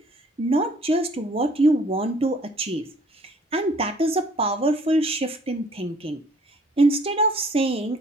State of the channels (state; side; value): normal; both; correlation 0.57